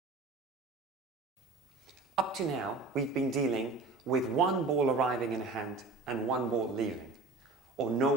Up to now, we've been dealing with 1 ball arriving in a hand and 1 ball leaving, or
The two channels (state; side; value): quieter; left; 3.8 dB